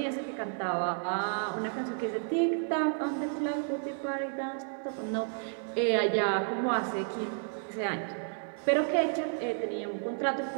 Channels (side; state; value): left; silent; 57 dB below the other